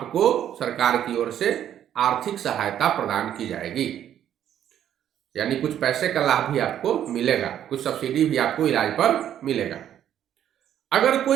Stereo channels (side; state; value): left; quieter; 10.5 dB